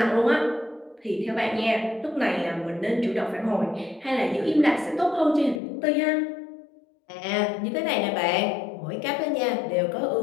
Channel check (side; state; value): right; drops out; at 5.6 s